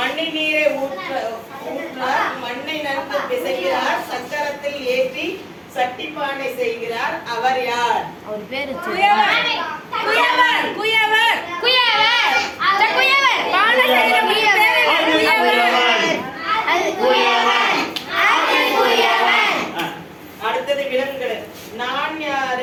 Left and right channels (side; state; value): both; identical; correlation 1.00